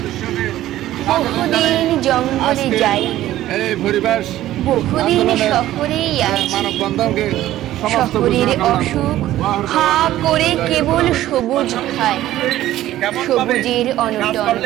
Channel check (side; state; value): left; quieter; 14.1 dB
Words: বহুদিন জঙ্গলে যাইনি, বহুদিন শহরেই আছি। শহরের অসুখ হা করে কেবল সবুজ খায়, সবুজের অনটন